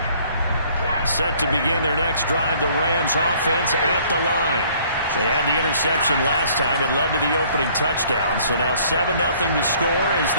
Set to begin their next drive, the Rams offense at the line. They had the interception last time. It led to the opening touchdown. So now 7-0 to score as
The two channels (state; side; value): inverted; both; correlation -0.59